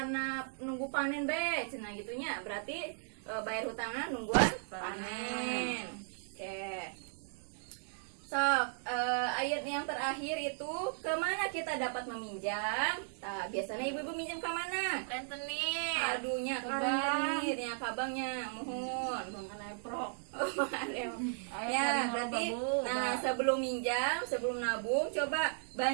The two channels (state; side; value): silent; left; digital silence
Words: nunggu panen be, cenah gitunya, berarti bayar hutangnya nungguan panen. Oke. Ayat yang terakhir itu kemana kita dapat meminjam? Nah, biasanya ibu-ibu minjam ke mana? Rentenir. Aduhnya rentenir, ya kabangnya, mohon. Ya, berarti nah sebelum minjam, sebelum nabung, coba